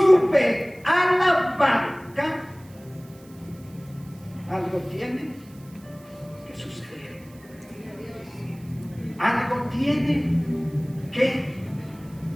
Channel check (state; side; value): noise; right; hiss, 27 dB below the sound